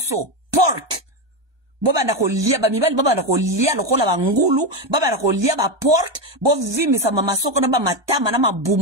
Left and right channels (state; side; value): late; left; 1.2 ms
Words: pork. Boba ndako lia ba mibali, boba ndako lia lokola bangulu, boba ndako lia ba pork, bo vimi sa mamasoko na ba matama na